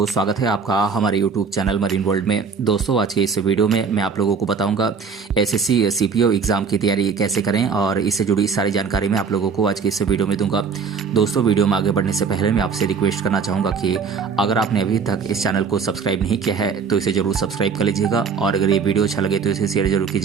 स्वागत है आपका हमारे यूट्यूब चैनल मरीन वर्ल्ड में। दोस्तों, आज के इस वीडियो में मैं आप लोगों को बताऊंगा एसएससी सीपीओ एग्ज़ाम की तैयारी कैसे करें और इससे जुड़ी सारी जानकारी मैं आप लोगों को आज के इस वीडियो में दूंगा। दोस्तों, वीडियो में आगे बढ़ने से पहले मैं आपसे रिक्वेस्ट करना चाहूँगा कि अगर आपने अभी तक इस चैनल को सब्सक्राइब नहीं किया है तो इसे ज़रूर सब्सक्राइब कर लीजिएगा और अगर ये वीडियो अच्छा लगे तो इसे शेयर जरूर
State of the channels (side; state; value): left; quieter; 5.7 dB